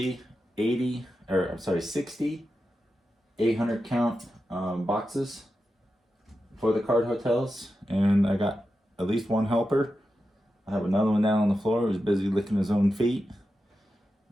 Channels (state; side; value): normal; both; correlation 0.90